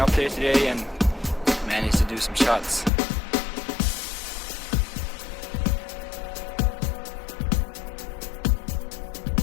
there today and manage to do some shots.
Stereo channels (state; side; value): drops out; right; at 2.9 s